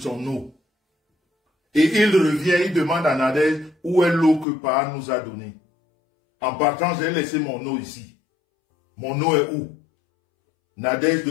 eau. Et il revient, il demande à Nadège où est l'eau que Pa nous a donnée. En partant, j'ai laissé mon eau ici. Mon eau est où? Nadège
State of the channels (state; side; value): drops out; right; at 4.5 s